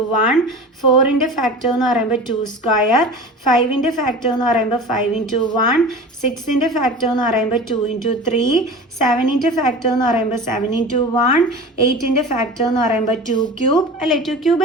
1, 4ൻ്റെ ഫാക്ടർ എന്ന് പറയുമ്പോൾ 2², 5ൻ്റെ ഫാക്ടർ എന്ന് പറയുമ്പോൾ 5 into 1, 6ൻ്റെ ഫാക്ടർ എന്ന് പറയുമ്പോൾ 2 into 3, 7ൻ്റെ ഫാക്ടർ എന്ന് പറയുമ്പോൾ 7 into 1, 8ൻ്റെ ഫാക്ടർ എന്ന് പറയുമ്പോൾ 2³ അല്ലേ? 2³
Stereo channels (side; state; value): both; normal; correlation 0.35